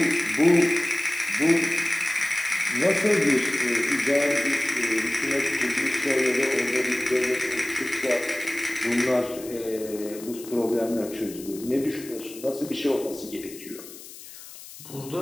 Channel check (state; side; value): noise; left; hiss, 16 dB below the sound